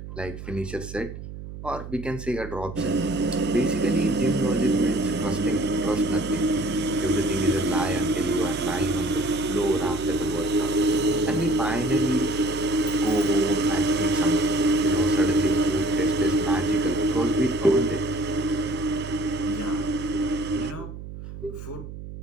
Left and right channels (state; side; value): noise; right; hum, 11 dB below the sound